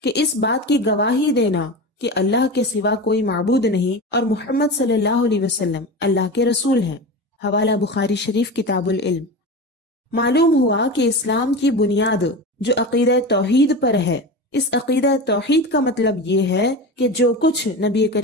کہ اس بات کی گواہی دینا کہ اللہ کے سوا کوئی معبود نہیں اور محمد صلی اللہ علیہ وسلم اللہ کے رسول ہیں۔ حوالہ بخاری شریف کتاب العلم۔ معلوم ہوا کہ اسلام کی بنیاد جو عقیدہ توحید پر ہے، اس عقیدہ توحید کا مطلب یہ ہے کہ جو کچھ نبی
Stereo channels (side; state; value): both; normal; correlation 0.26